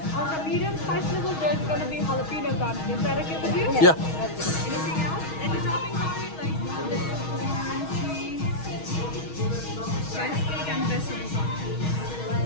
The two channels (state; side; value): late; right; 6.3 ms